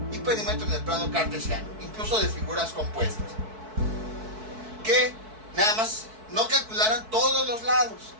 y perímetro en el plano cartesiano, incluso de figuras compuestas. Que nada más no calcularan todos los lados,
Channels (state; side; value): late; left; 4.6 ms